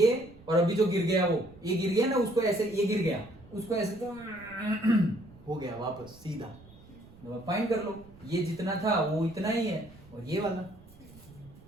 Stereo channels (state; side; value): noise; right; rumble, 22 dB below the sound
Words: और अभी जो गिर गया वो, ये गिर गया ना, उसको ऐसे, ये गिर गया उसको ऐसे, तो हो गया वापस सीधा, फाइंड कर लो, ये जितना था वो इतना ही है और ये वाला।